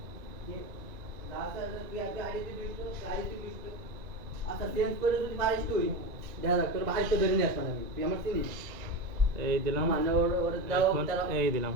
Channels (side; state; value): left; late; 1.9 ms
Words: এই দিলাম, এখন এই দিলাম,